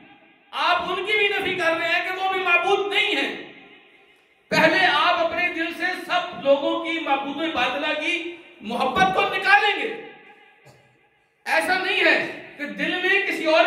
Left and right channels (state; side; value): identical; both; correlation 1.00